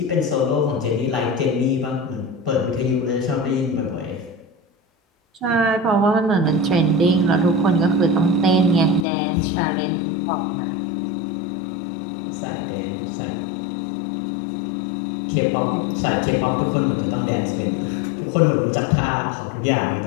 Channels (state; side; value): drops out; right; at 9.1 s